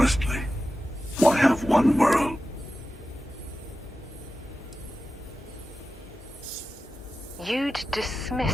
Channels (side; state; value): both; normal; correlation 0.93